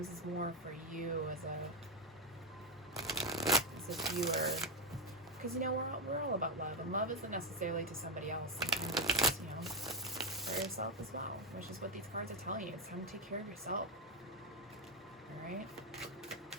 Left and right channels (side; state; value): both; normal; correlation 0.03